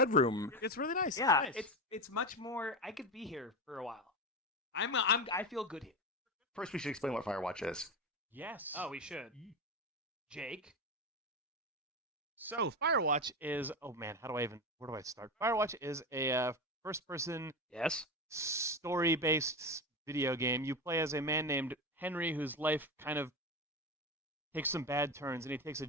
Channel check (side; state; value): both; normal; correlation 0.19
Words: It's really nice. Yeah, nice. it's much more. I could be here for a while. I feel good here. First, we should explain what Firewatch is. Yes. Oh, we should. Jake. So Firewatch is. Oh man, where do I start? Firewatch is a first-person Yes. story-based video game. You play as a man named Henry, whose life kind of takes some bad turns, and he takes a